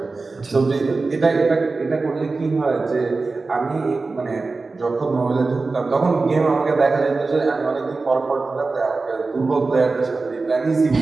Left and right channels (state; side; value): quieter; left; 3.8 dB